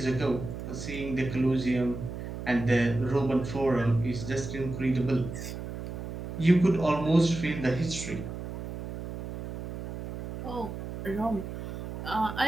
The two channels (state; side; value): noise; right; hum, 7 dB below the sound